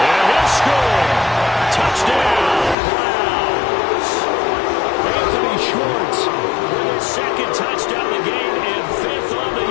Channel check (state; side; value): drops out; right; at 2.8 s